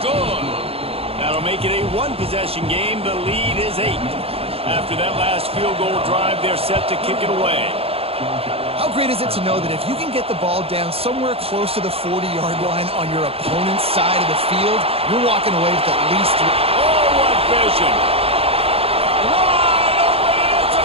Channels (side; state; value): left; late; 0.28 ms